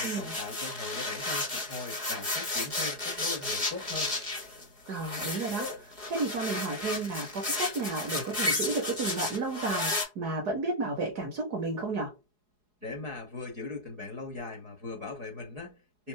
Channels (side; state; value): left; late; 4.8 ms